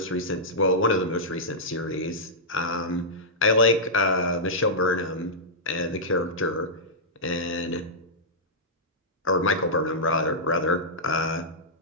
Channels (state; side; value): normal; both; correlation -0.12